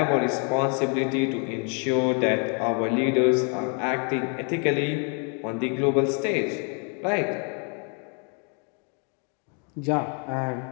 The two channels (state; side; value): quieter; right; 38.9 dB